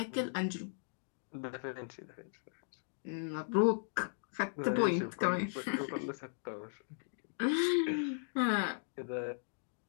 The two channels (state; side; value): silent; right; digital silence